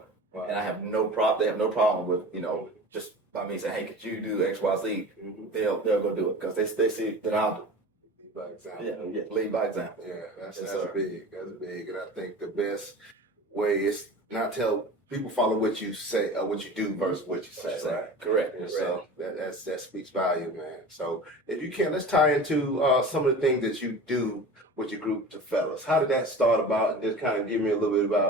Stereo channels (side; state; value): both; normal; correlation 0.36